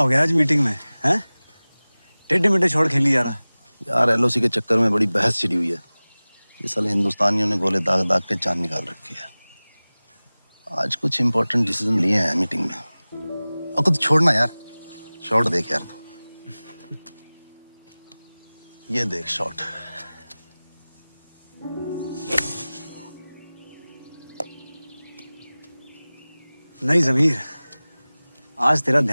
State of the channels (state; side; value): inverted; both; correlation -0.99